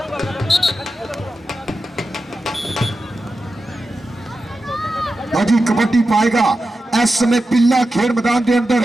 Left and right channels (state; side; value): normal; both; correlation 0.91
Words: अजी कबड्डी पाएगा इस समय पिल्ला खेल मैदान के अंदर